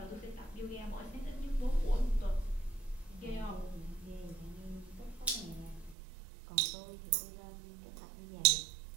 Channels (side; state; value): left; drops out; at 6.0 s